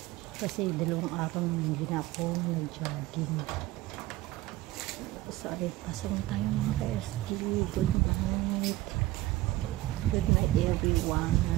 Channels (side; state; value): left; quieter; 17.2 dB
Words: Kasi 2 araw hindi na ako nag-jogging. So, ay, pasok na tayo mga ka-SG. Good night. Good night everyone.